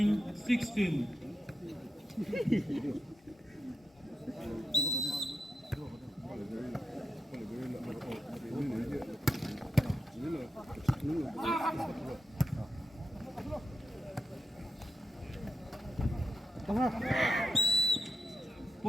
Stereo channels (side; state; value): both; normal; correlation 0.86